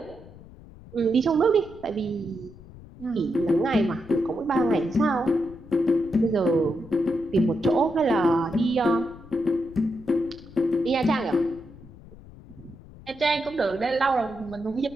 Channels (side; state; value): left; noise; rumble, 19 dB below the sound